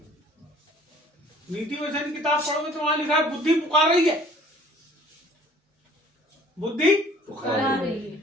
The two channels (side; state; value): both; normal; correlation 0.53